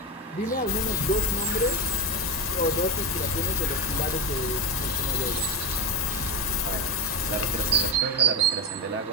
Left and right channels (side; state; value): both; normal; correlation 0.13